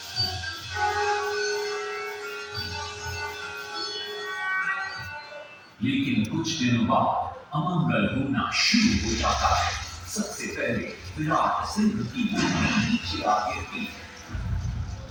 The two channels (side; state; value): both; identical; correlation 1.00